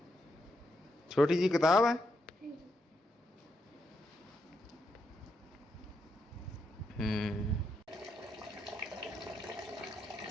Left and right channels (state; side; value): normal; both; correlation 0.81